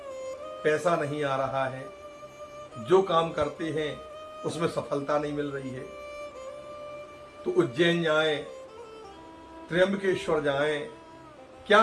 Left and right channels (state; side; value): identical; both; correlation 1.00